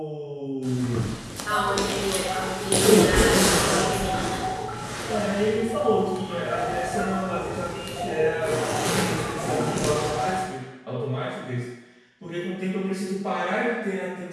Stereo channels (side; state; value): both; identical; correlation 1.00